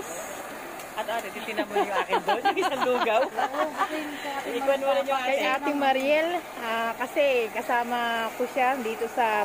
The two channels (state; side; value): noise; left; rumble, 29 dB below the sound